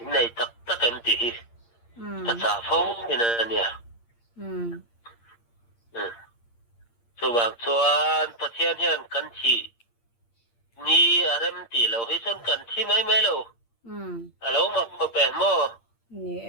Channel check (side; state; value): right; late; 8.6 ms